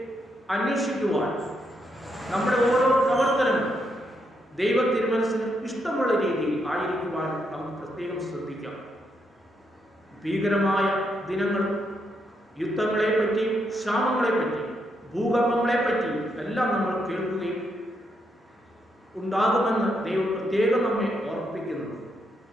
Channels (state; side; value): normal; both; correlation 0.78